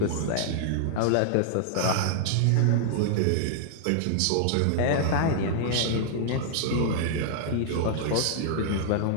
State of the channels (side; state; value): both; different; correlation -0.01